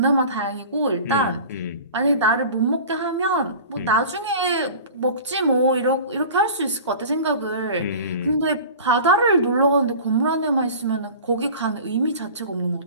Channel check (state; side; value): inverted; both; correlation -0.39